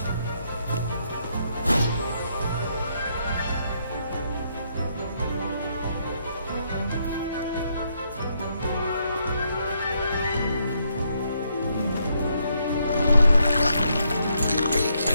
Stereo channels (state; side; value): inverted; both; correlation -0.75